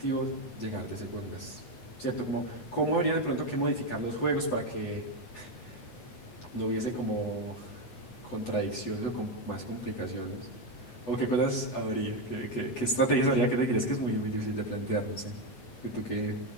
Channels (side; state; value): right; late; 8.1 ms